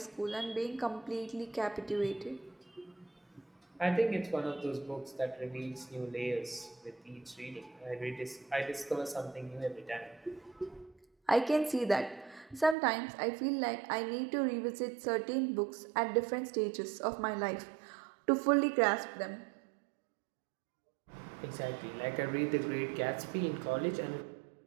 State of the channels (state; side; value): drops out; left; at 12.8 s